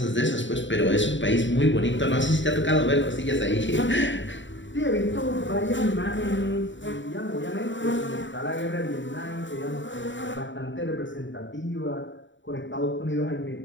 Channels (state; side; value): late; right; 0.54 ms